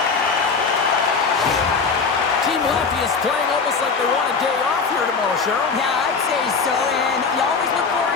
Team Latvia's playing almost like they want a day off here tomorrow, Cheryl. Yeah, I'd say so, and you always look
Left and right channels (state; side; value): quieter; right; 5.0 dB